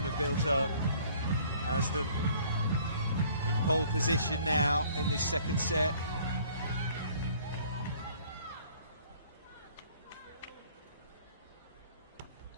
have built up has them in pole position now in this second set.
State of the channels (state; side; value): inverted; both; correlation -0.56